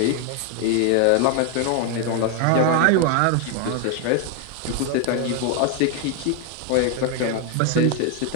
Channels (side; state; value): both; different; correlation 0.01